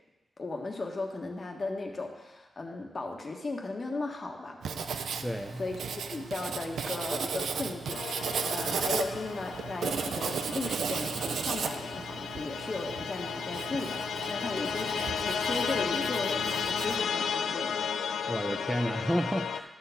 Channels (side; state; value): both; normal; correlation 0.80